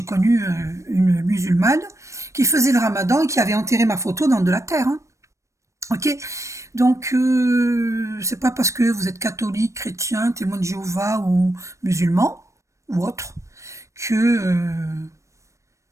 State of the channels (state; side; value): late; left; 0.15 ms